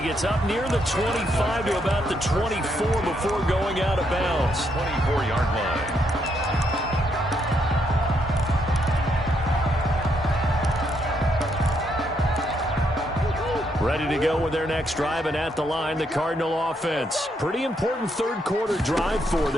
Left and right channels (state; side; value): normal; both; correlation 0.76